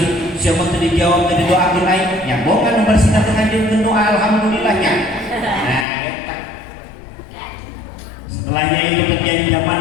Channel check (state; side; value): drops out; right; at 5.9 s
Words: siapa tadi dijawab tadi doa lain yang bohongan bersih nanti ngajian doa alhamdulillahnya. Nah, setelahnya itu terjadi zaman